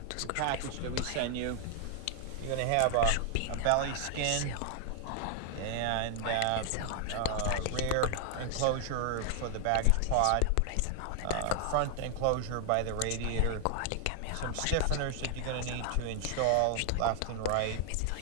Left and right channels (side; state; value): both; different; correlation 0.00